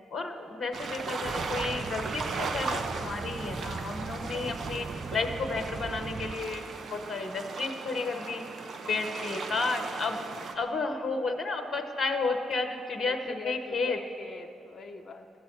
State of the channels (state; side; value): normal; both; correlation 0.74